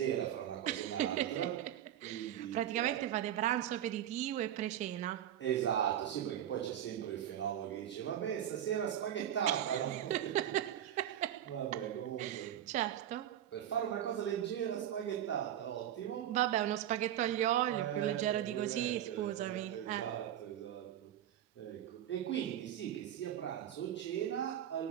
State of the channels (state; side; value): quieter; left; 11.1 dB